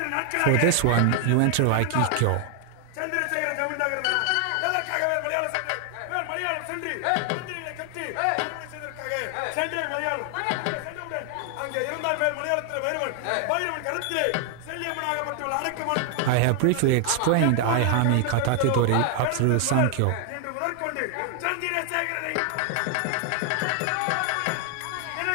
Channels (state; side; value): different; both; correlation 0.00